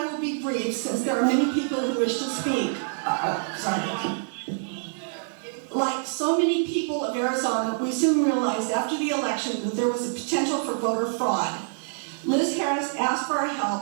will be brief since there are many people who wish to speak. Sorry. Like so many people of Arizona, we soon realized after the election that there was a potential for voter fraud. Liz Harris asked for our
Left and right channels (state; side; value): silent; left; digital silence